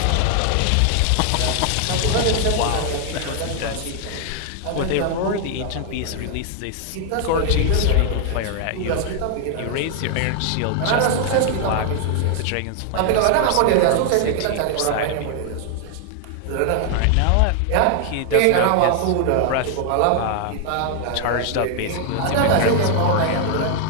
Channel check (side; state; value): both; different; correlation 0.00